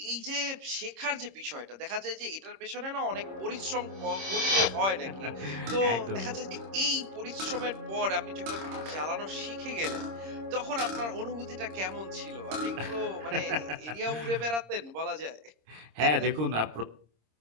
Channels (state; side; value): late; left; 26 ms